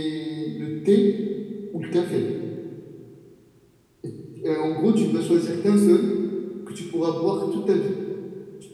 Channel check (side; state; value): both; identical; correlation 1.00